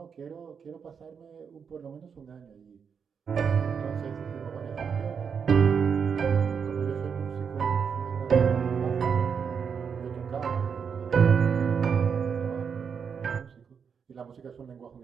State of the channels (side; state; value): left; quieter; 6.6 dB